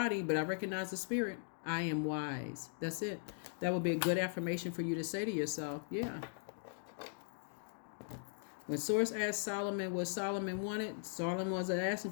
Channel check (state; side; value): silent; right; digital silence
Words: but I recognize the spirit. I am wise. That's it. That would be a good affirmation for you to say to yourself. Yeah. When Source asked Solomon what Solomon wanted, Solomon wasn't